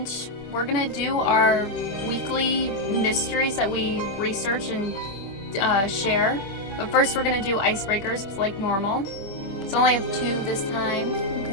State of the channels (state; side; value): late; right; 26 ms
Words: we're going to do our weekly mysteries that we research and share. But first we're going to do icebreakers like normal. So I only have 2 this time.